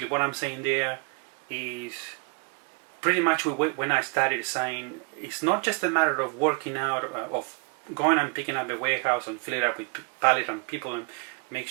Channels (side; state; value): left; quieter; 34.8 dB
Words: what I'm saying there is pretty much when I started saying it's not just a matter of working out, of going and picking up a warehouse and fill it up with pallet and people and make